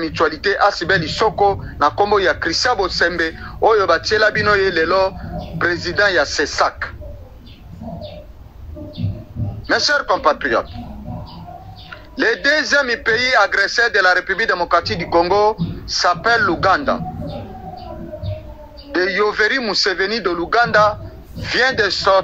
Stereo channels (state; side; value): identical; both; correlation 1.00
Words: Asibeli Soko na kombo ya Christian Bosembe oyo batiela bino ye lelo président ya CESAC. Mes chers compatriotes, le deuxième pays agresseur de la République démocratique du Congo s'appelle l'Ouganda. De Yoweri Museveni de l'Ouganda vient de